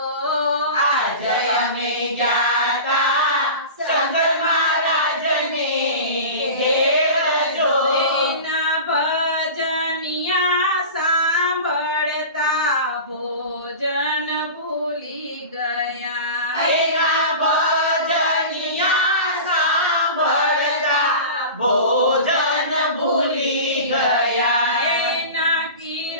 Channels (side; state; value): both; inverted; correlation -0.33